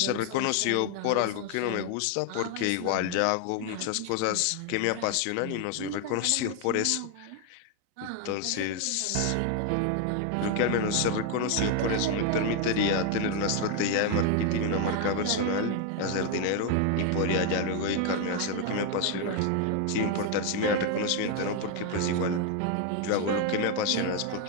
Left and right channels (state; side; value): different; both; correlation 0.01